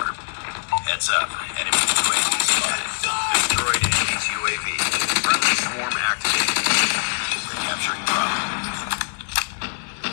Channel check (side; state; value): right; silent; digital silence